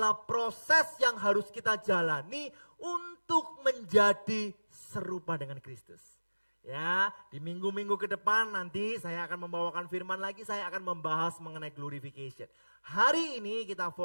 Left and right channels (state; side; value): inverted; both; correlation -1.00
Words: proses yang harus kita jalani untuk menjadi serupa dengan Kristus. Ya, di minggu-minggu ke depan nanti saya akan membawakan firman lagi, saya akan membahas mengenai glorification. Hari ini kita